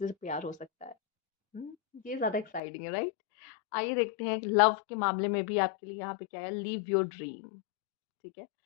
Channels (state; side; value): drops out; right; at 2.6 s